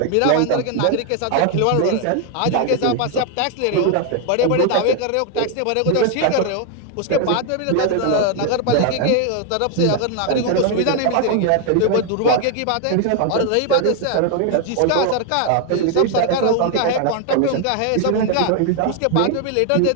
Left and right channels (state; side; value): different; both; correlation 0.01